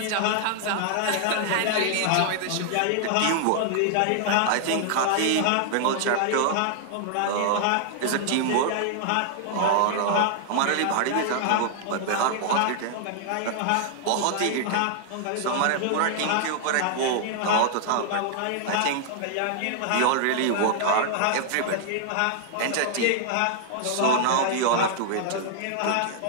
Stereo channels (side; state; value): both; different; correlation 0.00